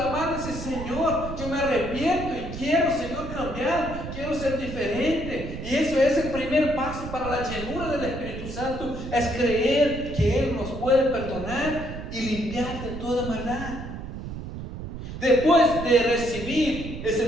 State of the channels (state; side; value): noise; right; rumble, 8 dB below the sound